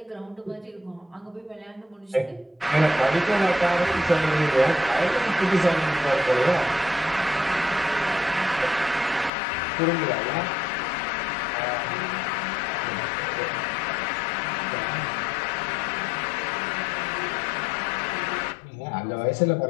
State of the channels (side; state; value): right; drops out; at 9.3 s